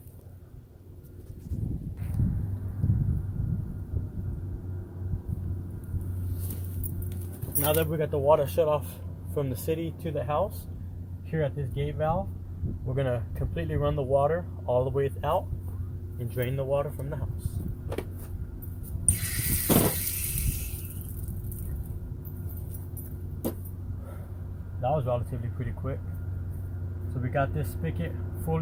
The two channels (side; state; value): both; identical; correlation 1.00